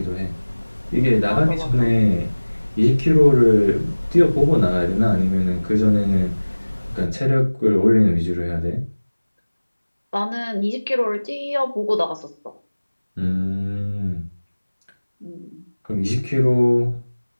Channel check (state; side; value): inverted; both; correlation -1.00